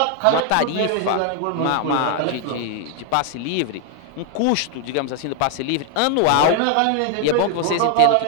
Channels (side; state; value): both; different; correlation 0.00